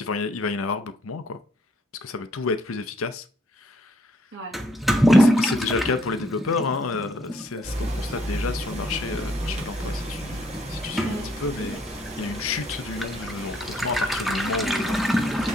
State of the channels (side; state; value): both; normal; correlation 0.68